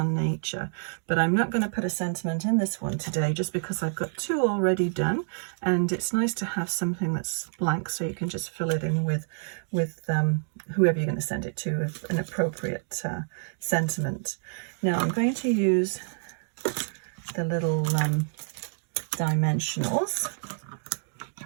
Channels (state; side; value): silent; left; digital silence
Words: Nature. But I'm not going to put a sentiment in this one today just because I've got two already done, and it's nice to have something that's blank so you can just fill it in with whoever you're going to send it to with an appropriate sentiment. Now I'm going to use the little dimensionals,